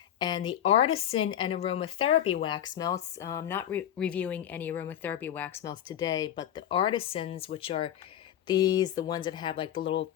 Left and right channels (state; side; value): quieter; right; 10.8 dB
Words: And the Artisan and Aromatherapy wax melts, I'm not reviewing any aromatherapy wax melts today, but the Artisans, which are these, the ones that have like